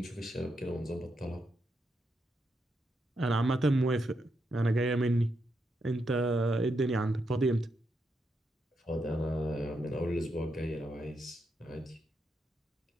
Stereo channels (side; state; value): both; normal; correlation 0.82